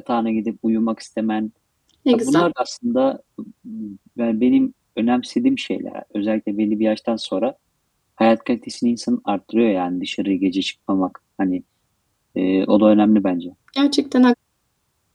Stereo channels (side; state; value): both; identical; correlation 1.00